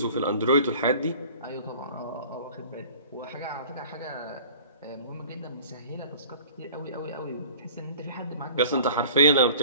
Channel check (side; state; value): both; inverted; correlation -0.45